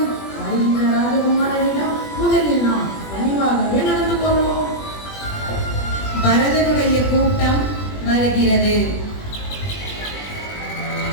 வருகின்ற ராஜகுமாரனிடம் முதலில் நாம் பணிவாகவே நடந்து கொள்வோம். பரதனுடைய கூட்டம் வருகிறது.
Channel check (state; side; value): late; right; 20 ms